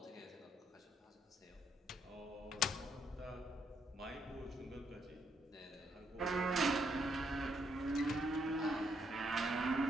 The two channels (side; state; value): both; normal; correlation 0.74